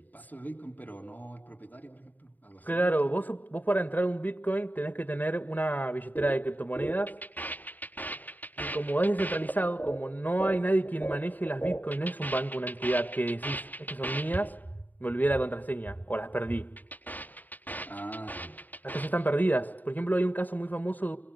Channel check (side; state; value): right; late; 0.085 ms